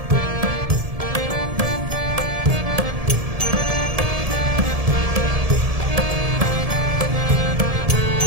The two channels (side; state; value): left; late; 1.7 ms